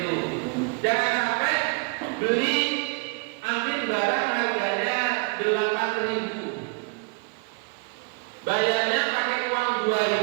Jangan sampai beli ambil barang harganya 8.000, bayarnya pakai uang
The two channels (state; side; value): quieter; left; 32.6 dB